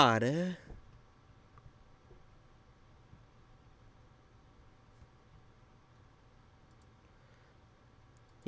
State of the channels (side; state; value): both; identical; correlation 1.00